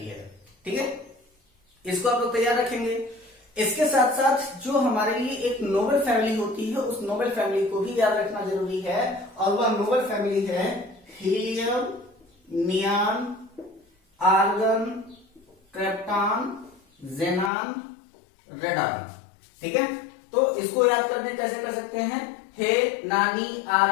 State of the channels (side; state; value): right; drops out; at 17.5 s